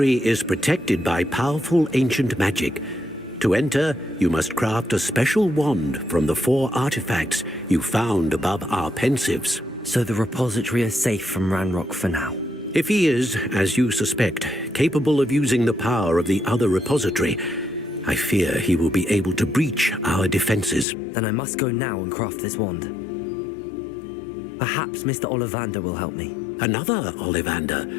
is protected by powerful ancient magic. To enter, you must craft a special wand from the 4 artifacts you found above our pensives. So the repository is safe from Ranrock for now? If he is, as you suspect, capable of using the power of the other repository, I fear he will be able to breach our defenses. Then I must go now and craft this wand. Perhaps Mr. Ollivander will help me. Another Ollivander?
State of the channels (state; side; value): drops out; right; at 20.9 s